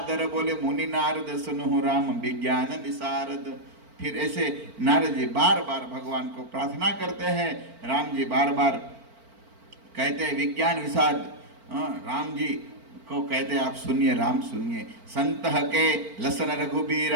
बोले मुनि नारद, सुनु राम विज्ञान विशारद। फिर ऐसे नारद जी बार बार भगवान को प्रार्थना करते हैं। राम जी बार बार कहते हैं विज्ञान विशारद, राम जी को कहते हैं आप सुनिए, राम सुनिए। संत के लसन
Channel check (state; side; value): late; left; 4.4 ms